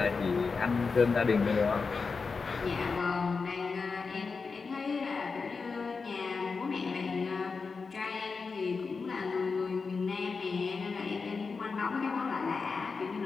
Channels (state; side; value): quieter; right; 4.8 dB